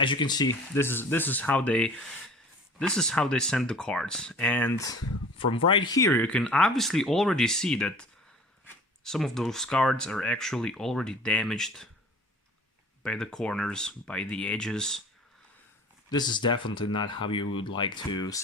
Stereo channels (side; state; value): both; normal; correlation 0.45